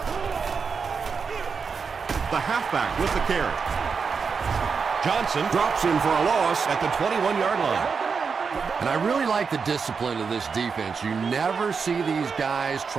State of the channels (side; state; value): left; quieter; 5.5 dB